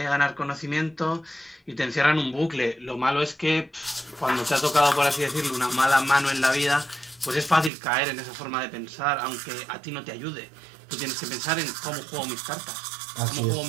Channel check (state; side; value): drops out; left; at 7.7 s